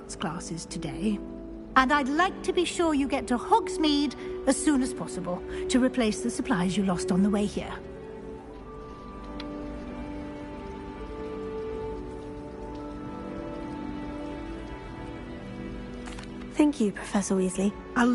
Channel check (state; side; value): identical; both; correlation 1.00